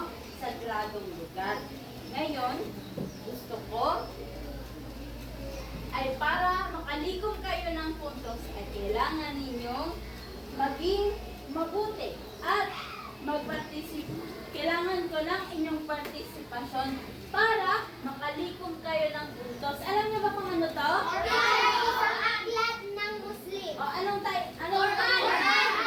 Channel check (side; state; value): both; identical; correlation 1.00